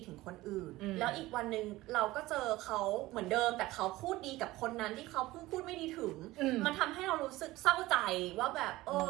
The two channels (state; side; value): quieter; left; 18.3 dB